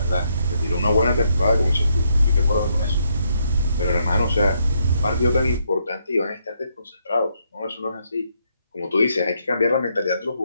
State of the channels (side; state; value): both; inverted; correlation -0.75